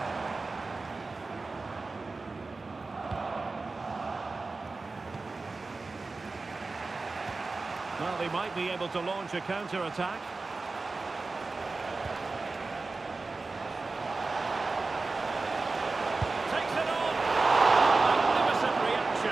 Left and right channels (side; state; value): left; quieter; 3.7 dB